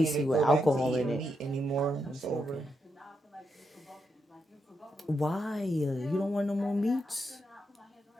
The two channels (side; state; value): both; normal; correlation 0.83